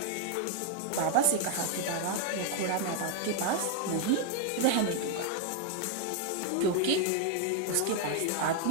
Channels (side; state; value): both; different; correlation 0.00